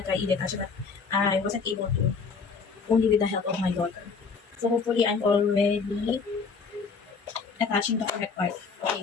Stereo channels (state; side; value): quieter; right; 5.1 dB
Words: i-detach but I wasn't able to, only with the help of my daughter. So, hopefully, I'm already attaching the correct part.